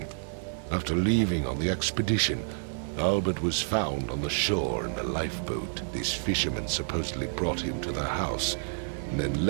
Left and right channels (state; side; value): silent; left; digital silence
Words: After leaving on the expedition, Albert was found on the shore in a lifeboat. This fisherman supposedly brought him to the house, and then